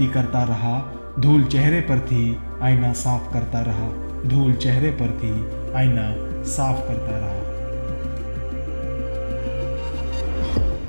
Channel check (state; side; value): inverted; both; correlation -1.00